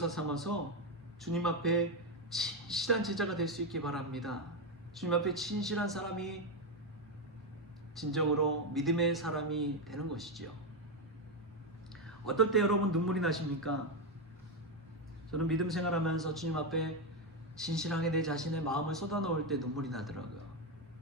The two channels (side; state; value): both; normal; correlation 0.07